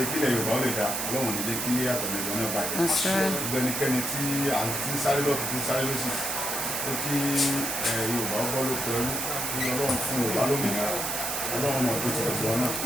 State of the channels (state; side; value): noise; right; hiss, 1 dB below the sound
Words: kílẹ̀ Yorùbá ó lè dá Ọlọ́run ní kí àtọ̀nẹ̀dọ̀ náà bàjẹ́ gbogbo ẹnikẹ́ni tí à ń tí ń sáré lọ́tún tí ń sáré lọ́sì ó kí Yorùbá ó bọ́ lóko ẹrú kí Ọlọ́run fún Yorùbá lómìnira Ọlọ́run náà tó tẹ̀lé tiwọn náà